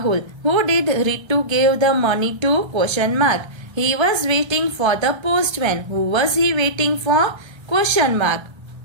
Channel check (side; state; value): left; late; 1.3 ms